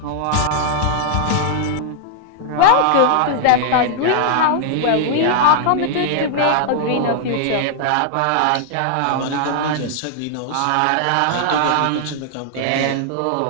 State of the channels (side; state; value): both; different; correlation -0.01